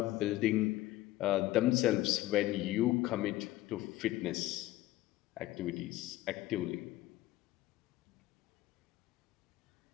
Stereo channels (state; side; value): quieter; right; 16.3 dB